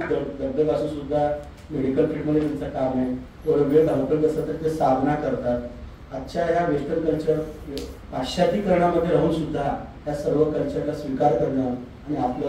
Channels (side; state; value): both; identical; correlation 1.00